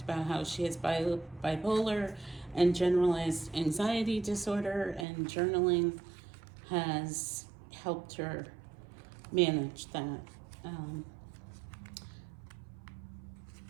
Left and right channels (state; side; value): drops out; left; at 5.1 s